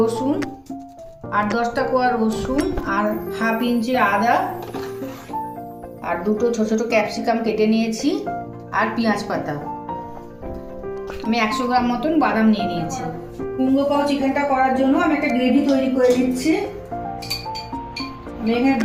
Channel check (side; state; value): both; identical; correlation 1.00